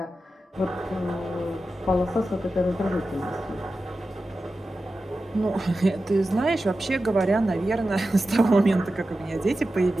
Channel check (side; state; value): both; normal; correlation 0.93